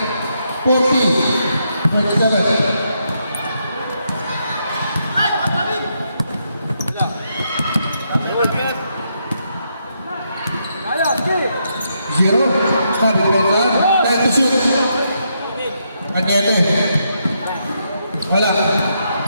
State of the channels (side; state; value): both; inverted; correlation -0.79